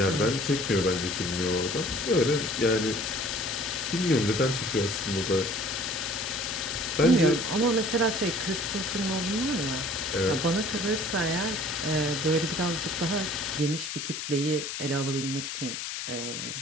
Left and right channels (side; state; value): left; noise; hiss, 5 dB below the sound